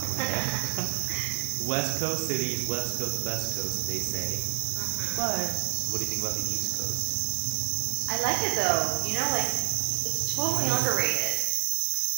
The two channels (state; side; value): silent; left; 59 dB below the other